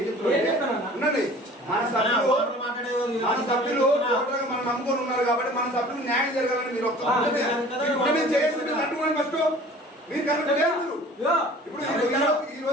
చెప్తున్నారు ఉండండి. మన సభ్యులు మనం నమ్ముకొని ఉన్నారు కాబట్టి మన సభ్యులు న్యాయం జరగాలని మీరు చేసి తట్టుకోండి. ఫస్ట్ మీరు కరెక్ట్ లేదు. ఇప్పుడు ఈ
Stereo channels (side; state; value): both; normal; correlation 0.46